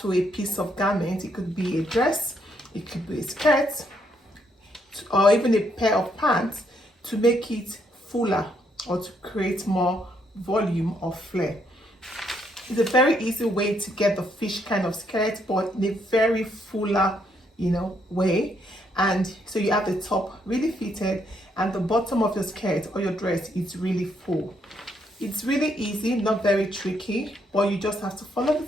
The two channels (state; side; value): normal; both; correlation 0.74